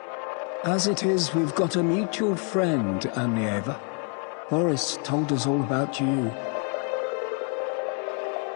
As it is, we've got a mutual friend, Amlieva. Boris told us all about you.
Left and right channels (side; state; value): right; quieter; 37.6 dB